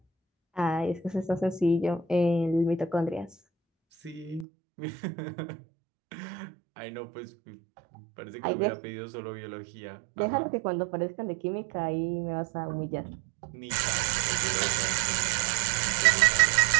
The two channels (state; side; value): drops out; left; at 4.5 s